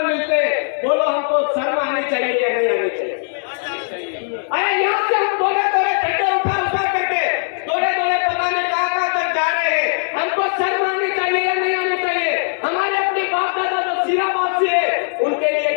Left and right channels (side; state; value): right; silent; digital silence